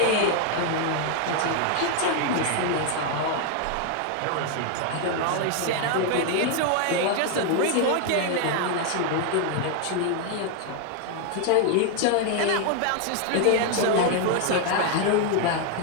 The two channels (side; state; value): both; different; correlation 0.00